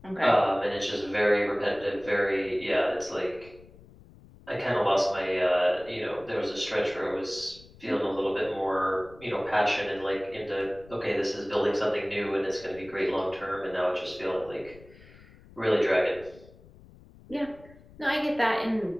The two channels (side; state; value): left; noise; rumble, 23 dB below the sound